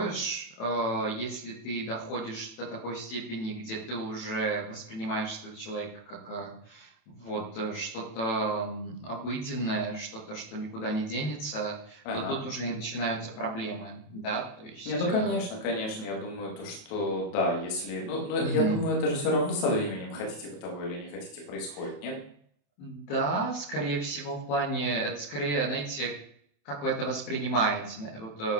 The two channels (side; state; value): right; late; 27 ms